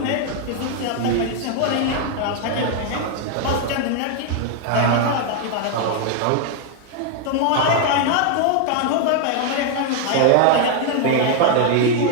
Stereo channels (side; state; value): both; different; correlation 0.00